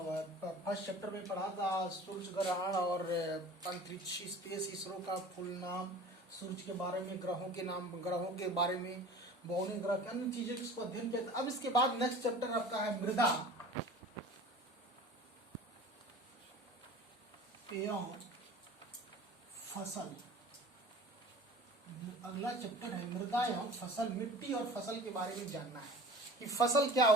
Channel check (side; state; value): both; normal; correlation 0.41